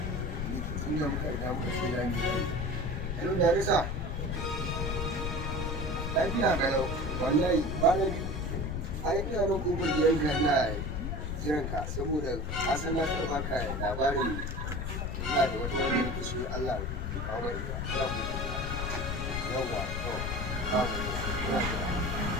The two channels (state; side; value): noise; left; rumble, 3 dB below the sound